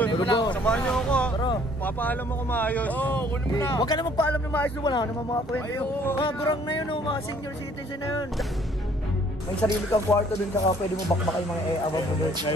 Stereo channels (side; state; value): both; normal; correlation 0.60